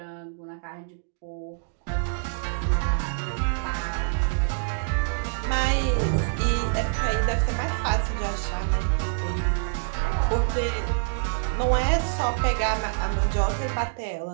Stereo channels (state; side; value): silent; left; digital silence